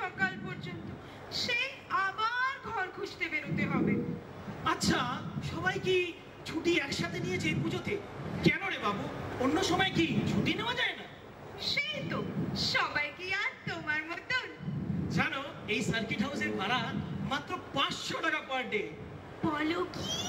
পর্যন্ত, সেই আবার ঘর খুঁজতে বেরোতে হবে। আচ্ছা, সবাই কি ছুটি একসাথে নিয়েছে এই পুজোতে? কেন রে বাবু, অন্য সময় কি ছুটি নেওয়া যায় না? সেই তো, সবাই কি আর তোমার মতন? জানো, এই সার্কিট হাউসের ভাড়া মাত্র 500 টাকা পার ডে। বলো কি,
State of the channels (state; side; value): identical; both; correlation 1.00